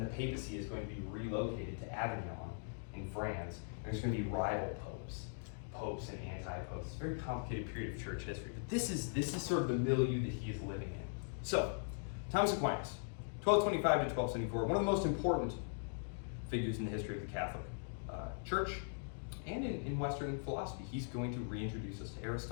the papacy is going to be relocated to Avignon in France, and there's going to be rival popes and anti-popes. It's a very complicated period of church history, but this is sort of the milieu that he is living in. So, Thomas Aquinas, 1225 to 1274, one of the most important figures in the history of the Catholic Church and in Western philosophy. He's going to reintroduce us to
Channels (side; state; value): right; silent; digital silence